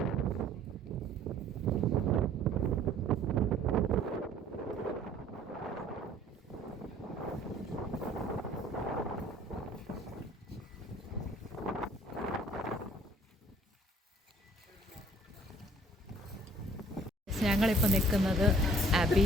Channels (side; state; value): both; normal; correlation 0.55